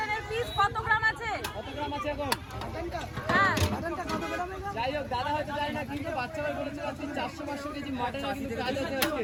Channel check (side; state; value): both; identical; correlation 1.00